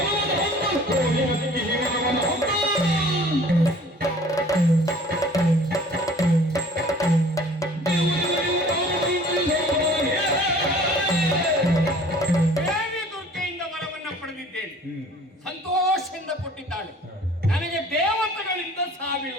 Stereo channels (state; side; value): normal; both; correlation 0.50